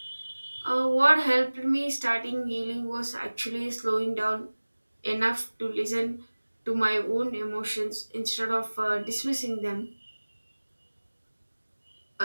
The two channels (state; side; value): inverted; both; correlation -1.00